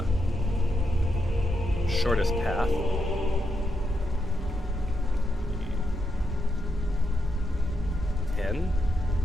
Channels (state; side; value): normal; both; correlation 0.82